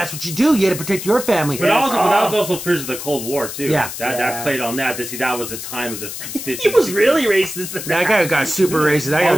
what you do. You got to protect your family. But that was also fears of the Cold War too. Yeah, that played on that. To see that was the time of the 50s. He was really racist. That guy got super racist. That guy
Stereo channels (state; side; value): noise; left; hiss, 8 dB below the sound